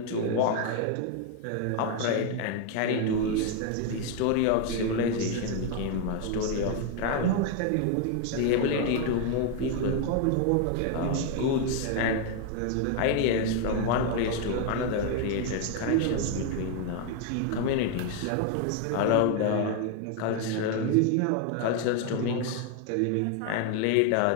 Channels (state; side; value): different; both; correlation 0.01